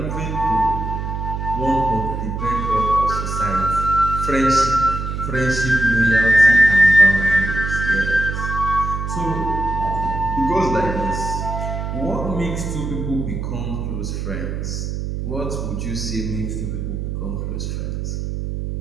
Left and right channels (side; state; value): right; noise; hum, 4 dB below the sound